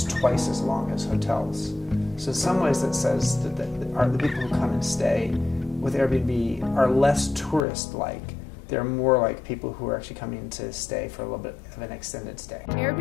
twice as long as hotels. So in some ways that says that the people who come and stay with Airbnb are less tourist-like. They're more like people who are actually coming to stay for a little bit of an extended stay.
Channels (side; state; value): right; drops out; at 7.7 s